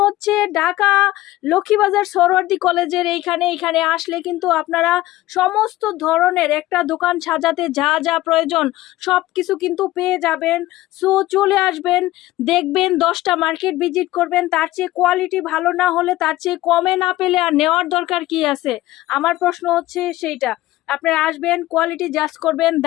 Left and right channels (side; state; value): right; quieter; 16.7 dB